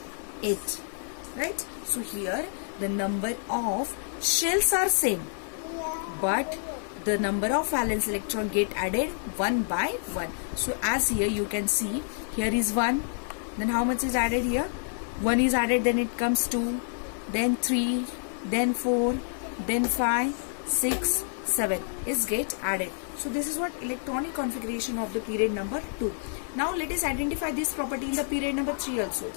8, right? So here the number of shells are same, but the number of valence electron get added one by one. So as here you can see, here is 1, then how much is added here? 1 is added, then it comes 2, then 3, then 4, then 5, 6, 7 is get added. So this is what electronic configuration of the period number 2. Now let us identify this property in the period number 3 also.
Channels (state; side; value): silent; right; 59 dB below the other